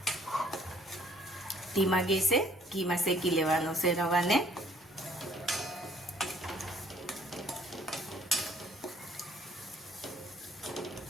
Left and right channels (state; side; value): normal; both; correlation 0.60